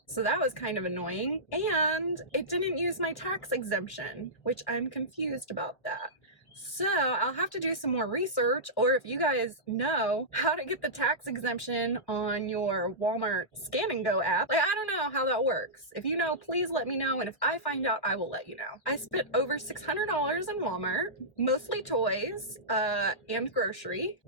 So that was kind of annoying. And it didn't use my tax exemption, which I'm confused about that. So I'll have to do some more research, or if you guys know how to get the tax exemption on your Walmart Scan and Go app, like I don't know how that works. If you know, please let me know, and if I find out, I will let you know. I spent over $600 in Walmart, mostly toys and grocery.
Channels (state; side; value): late; right; 1.3 ms